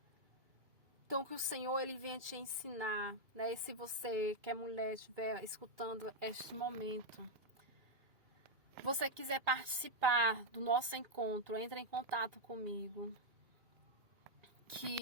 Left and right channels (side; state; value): left; late; 2.4 ms